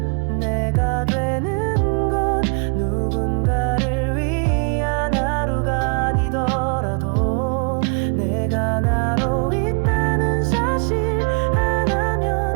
내가 되는 것, 누군가를 위한 하루가 아니더라도 내가 나로 있다는 사실 하나면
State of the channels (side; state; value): left; quieter; 37.5 dB